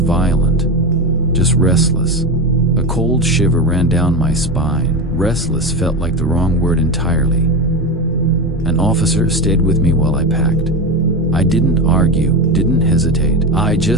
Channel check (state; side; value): normal; both; correlation 0.19